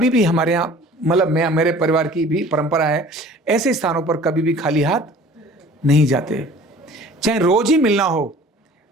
भी हमारे यहाँ, मतलब मेरे परिवार की भी परंपरा है, ऐसे स्थानों पर कभी भी खाली हाथ नहीं जाते, चाहे रोज ही मिलना हो।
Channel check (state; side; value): normal; both; correlation 0.47